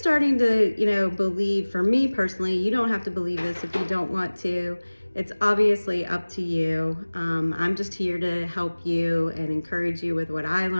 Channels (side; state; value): both; inverted; correlation -1.00